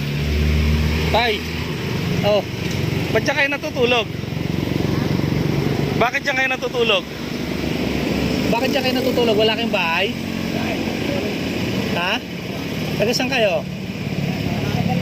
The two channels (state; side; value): identical; both; correlation 1.00